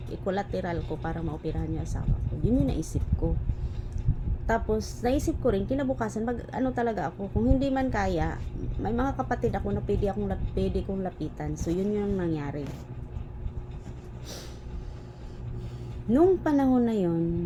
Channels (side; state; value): both; identical; correlation 1.00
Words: Equilateral ko para maoperahan yung asawa ko. Yun yung naisip ko. Tapos, naisip ko rin, kinabukasan, ano talaga ako, kung hindi man kaya, may mga kapatid ako na pwede kong lapitan. So, yun yung nangyari. Nung panahon na